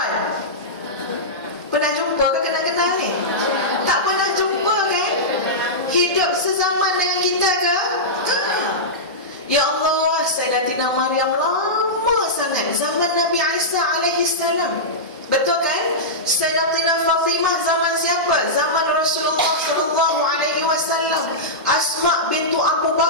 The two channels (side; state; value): both; normal; correlation -0.13